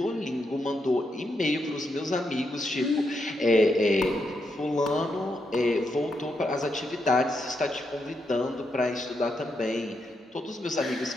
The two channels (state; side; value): normal; both; correlation 0.82